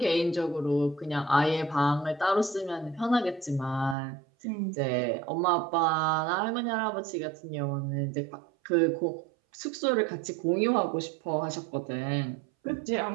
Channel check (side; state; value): left; drops out; at 4.0 s